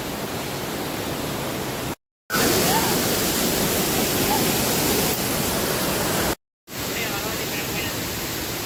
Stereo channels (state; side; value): identical; both; correlation 1.00